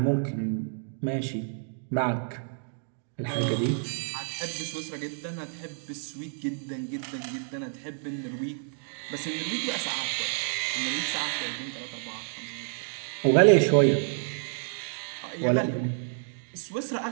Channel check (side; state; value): left; silent; digital silence